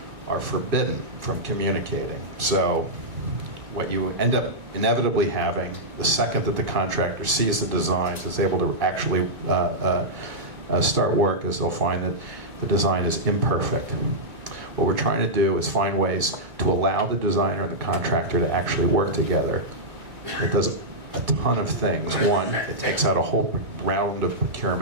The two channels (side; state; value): left; late; 2.1 ms